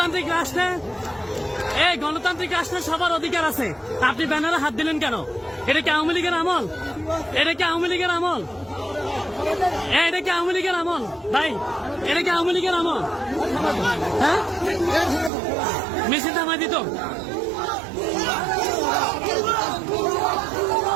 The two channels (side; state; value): left; drops out; at 15.3 s